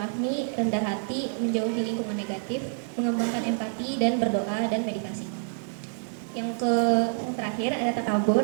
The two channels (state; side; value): silent; left; digital silence